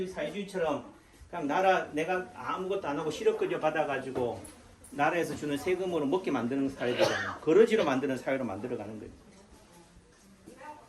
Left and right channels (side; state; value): both; identical; correlation 1.00